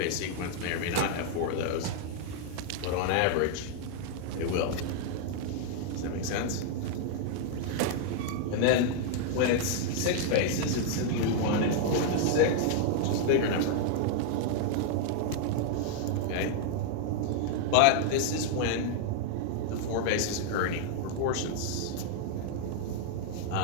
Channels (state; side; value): different; both; correlation -0.01